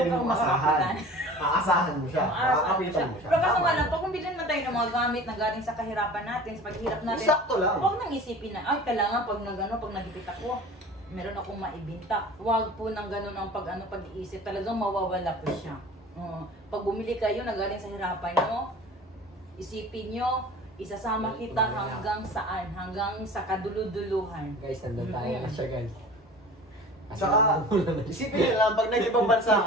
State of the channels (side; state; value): both; normal; correlation 0.41